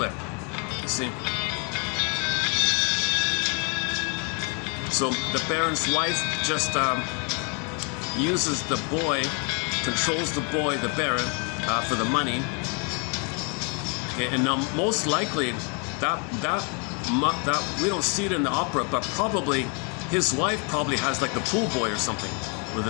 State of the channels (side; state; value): right; quieter; 36.3 dB